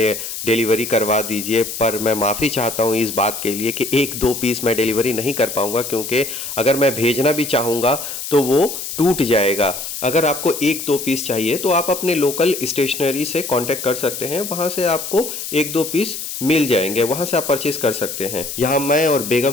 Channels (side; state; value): left; noise; hiss, 7 dB below the sound